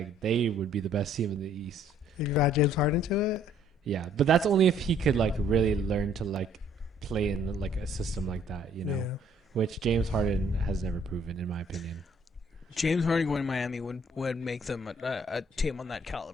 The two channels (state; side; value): normal; both; correlation 0.62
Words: they would be the best team in the East. If you add James Harden to it, Yeah, but that's only if he could like really learn to like play in like a system like that, you know, yeah. which James Harden has never proven, in my opinion. James Harden going to Miami would make them a team on that